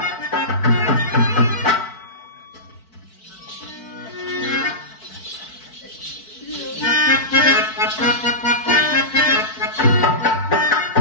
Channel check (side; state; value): right; late; 4.5 ms